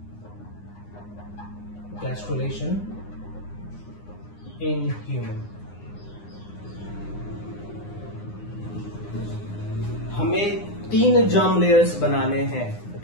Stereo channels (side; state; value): right; late; 9.8 ms